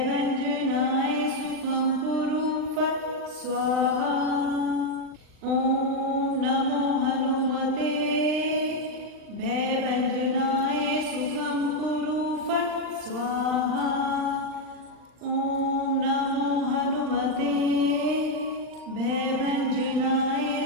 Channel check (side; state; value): left; late; 39 ms